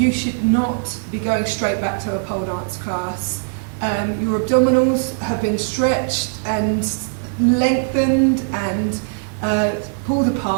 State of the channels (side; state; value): left; silent; 66 dB below the other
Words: should not be going straight back to a pole dance class. Your abdominals have been stretched and lengthened and pulled